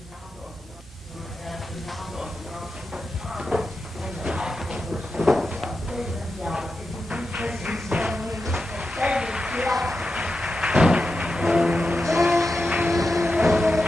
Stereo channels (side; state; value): both; normal; correlation 0.89